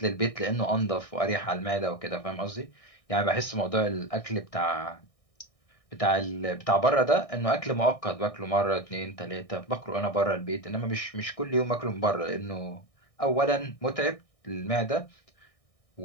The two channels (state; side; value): late; right; 1.6 ms